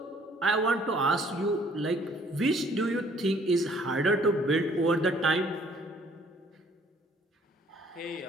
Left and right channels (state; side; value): normal; both; correlation 0.59